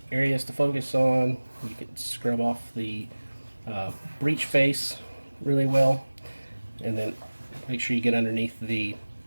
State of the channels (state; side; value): inverted; both; correlation -1.00